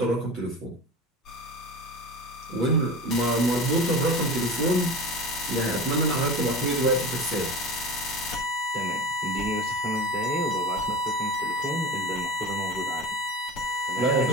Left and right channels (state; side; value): normal; both; correlation 0.31